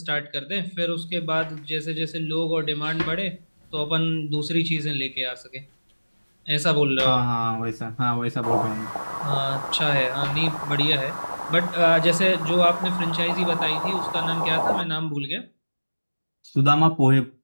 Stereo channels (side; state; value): both; inverted; correlation -1.00